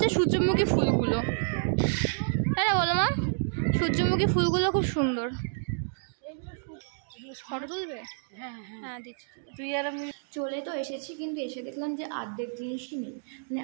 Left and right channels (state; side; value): silent; left; digital silence